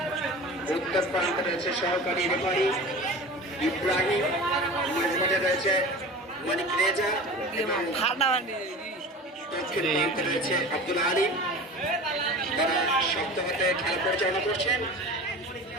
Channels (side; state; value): both; normal; correlation 0.35